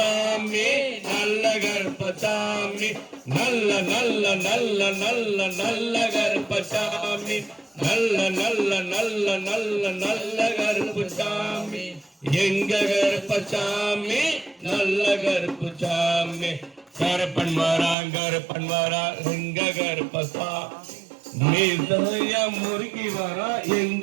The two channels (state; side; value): drops out; left; at 17.9 s